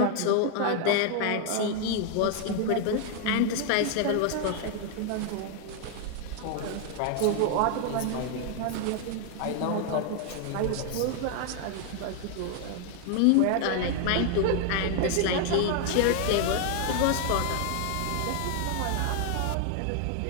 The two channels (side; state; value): both; different; correlation 0.00